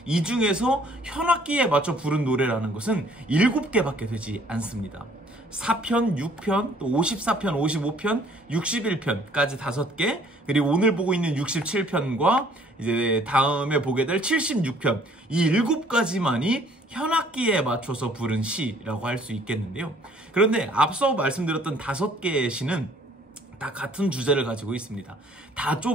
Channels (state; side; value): normal; both; correlation 0.58